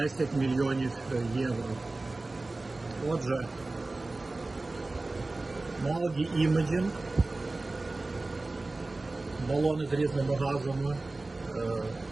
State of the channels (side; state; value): left; quieter; 3.1 dB